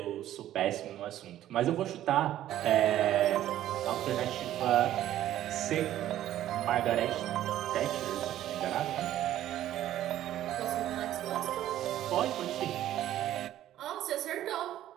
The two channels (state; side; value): quieter; left; 12.7 dB